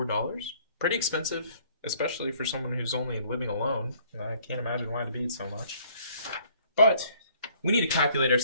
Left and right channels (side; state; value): both; inverted; correlation -0.60